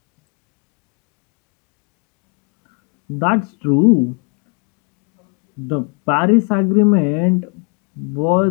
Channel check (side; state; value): right; quieter; 36.3 dB